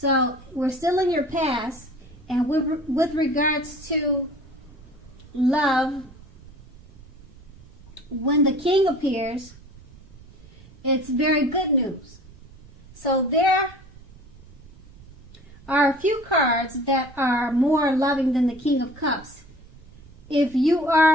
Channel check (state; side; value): noise; right; rumble, 22 dB below the sound